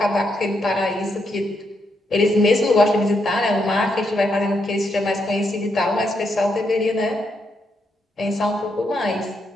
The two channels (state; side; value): normal; both; correlation 0.80